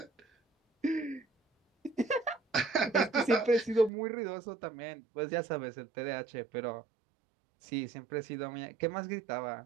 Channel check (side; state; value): left; drops out; at 3.9 s